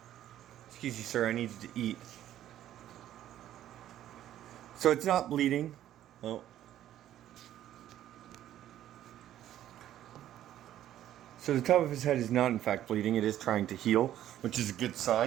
Excuse me, sir, I need you to eat. So it's not bleeding. Oh. So the top of his head is not in fact bleeding. It is trying to heal, which is a good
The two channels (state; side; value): quieter; left; 12.1 dB